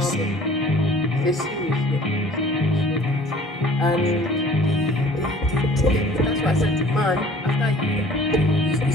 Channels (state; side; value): normal; both; correlation 0.50